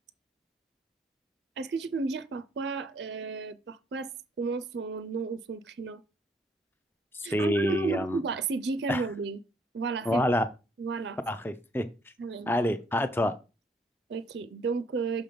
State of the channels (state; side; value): normal; both; correlation 0.66